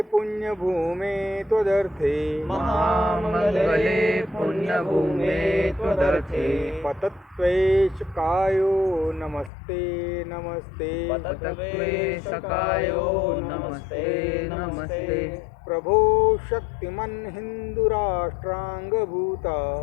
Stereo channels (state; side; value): drops out; right; at 9.5 s